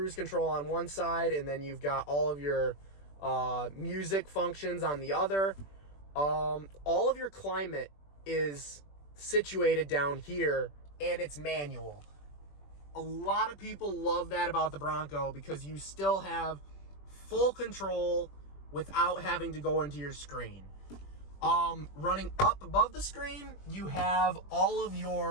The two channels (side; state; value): right; late; 21 ms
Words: control on one side, and then you've got all of your music functions on the other. All of your climate is situated down here, and it's manual. A lot of people love that about the Bronco because you still have full control without having to go into your screen. Running up above the screen, you have all of